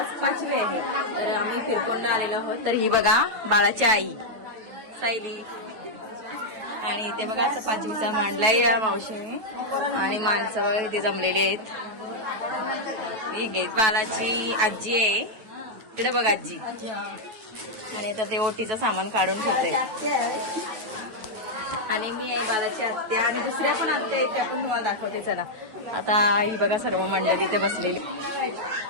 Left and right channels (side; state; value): left; late; 9.2 ms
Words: 5वी आहे. तर आम्ही फिरकोंडा आलेलो आहोत. तर ही बघा बाळाची आई सायली, आणि इथे बघा असं 5वीचा मांडलाय या मावशीने, आणि माणसं बघा इथे जमलेली आहेत. ही घे बाळाची आजी आहे तिकडे बघा आजी, आणि आता ते ओटीचं सामान काढून ठेवते. आणि मी आहे बालाची आत्या, आणि दुसऱ्या पण आत्या आहेत त्या पण तुम्हाला दाखवते. चला आता ही बघा सर्व मंडळी इथे बसलेली.